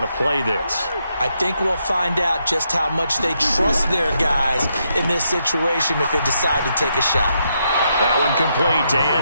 to play this. I think we'll find out just how much they trust their guys in this situation if they decide to take a shot. That one complete to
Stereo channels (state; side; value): inverted; both; correlation -0.79